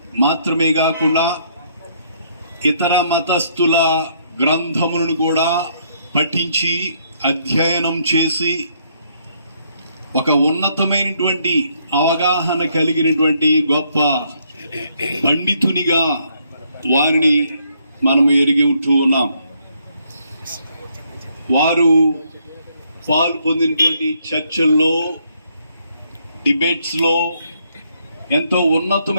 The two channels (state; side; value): inverted; both; correlation -0.70